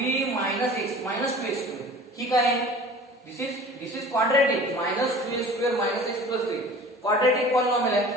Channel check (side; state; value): both; normal; correlation 0.43